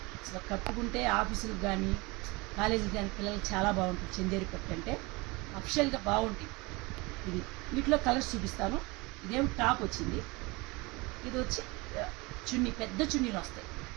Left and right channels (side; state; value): left; quieter; 25.0 dB